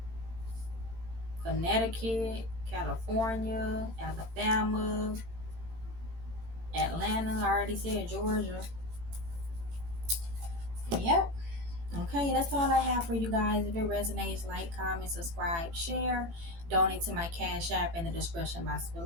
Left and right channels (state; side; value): late; left; 18 ms